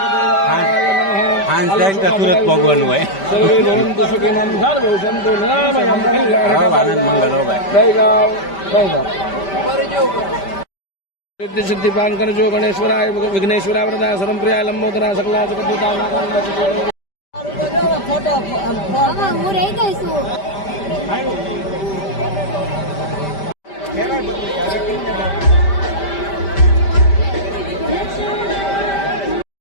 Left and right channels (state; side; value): late; right; 5.1 ms